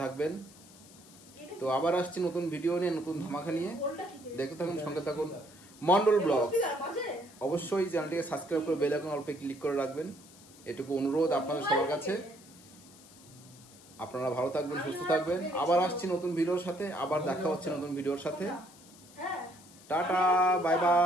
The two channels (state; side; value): noise; left; hiss, 22 dB below the sound